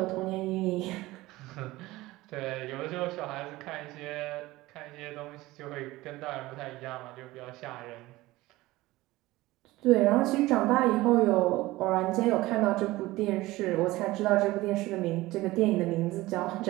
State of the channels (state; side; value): quieter; left; 18.7 dB